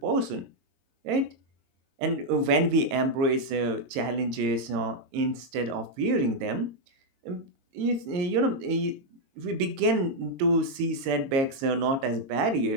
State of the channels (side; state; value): left; late; 22 ms